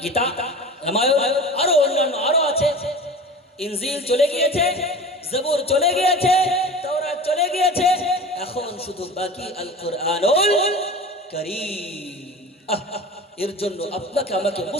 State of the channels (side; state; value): both; normal; correlation 0.35